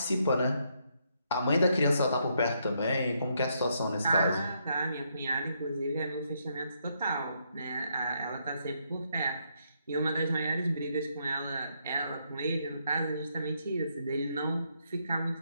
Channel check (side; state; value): both; inverted; correlation -0.76